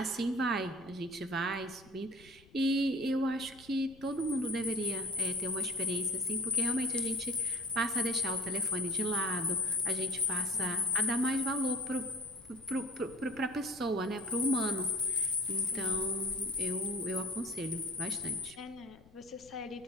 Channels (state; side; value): noise; left; rumble, 25 dB below the sound